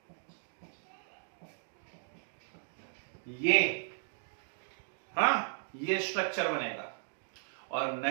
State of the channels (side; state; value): left; silent; digital silence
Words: ये, हाँ, ये स्ट्रक्चर बनेगा। और